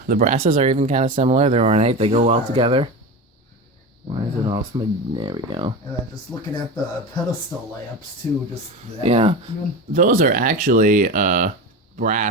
the brasses are even kind of similar. They're ornate. They go well together. Why is it all smudged? There we go. And then just looking at the pedestal lamps too, just that. Yeah, those are actually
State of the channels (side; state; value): both; normal; correlation 0.25